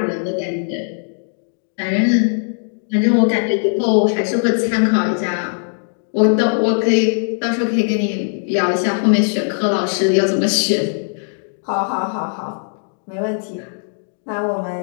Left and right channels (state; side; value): silent; right; 67 dB below the other